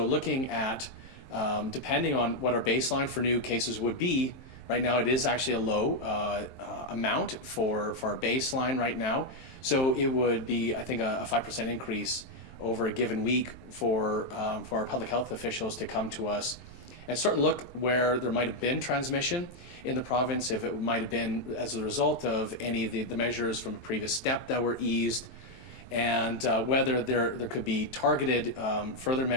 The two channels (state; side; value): late; right; 23 ms